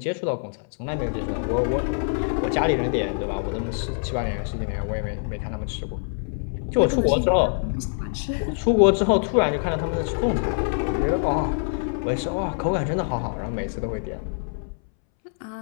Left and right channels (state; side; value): silent; right; 62 dB below the other